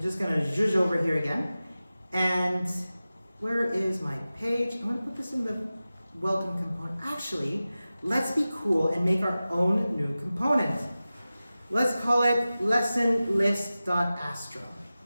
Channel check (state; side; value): inverted; both; correlation -0.96